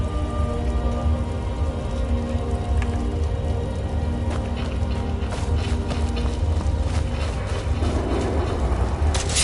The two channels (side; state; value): both; identical; correlation 1.00